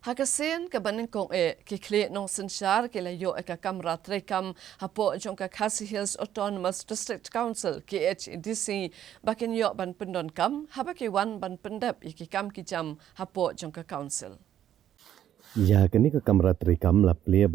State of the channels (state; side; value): quieter; left; 10.9 dB